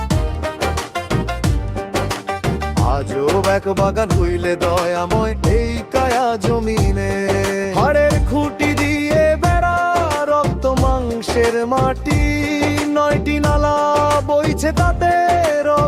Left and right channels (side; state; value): both; identical; correlation 1.00